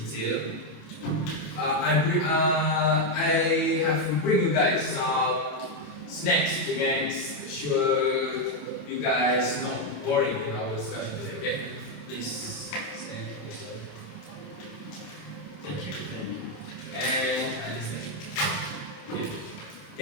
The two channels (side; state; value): right; late; 27 ms